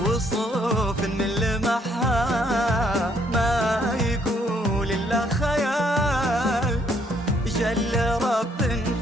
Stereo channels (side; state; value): both; normal; correlation 0.68